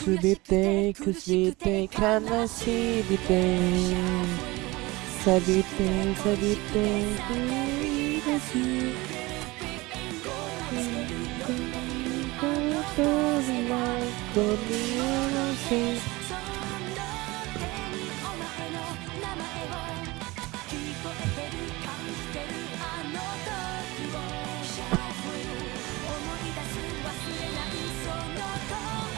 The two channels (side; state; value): left; quieter; 22.2 dB